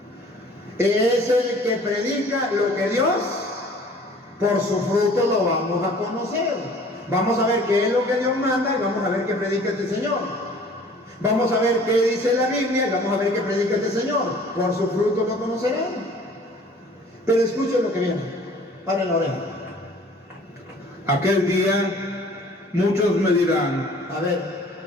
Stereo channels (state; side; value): normal; both; correlation 0.51